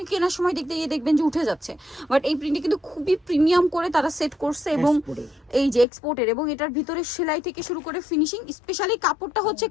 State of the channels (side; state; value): right; drops out; at 5.9 s